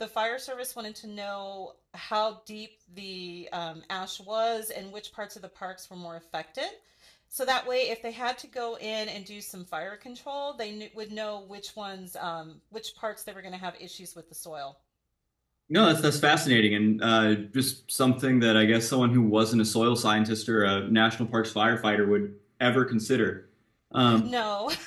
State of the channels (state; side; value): identical; both; correlation 1.00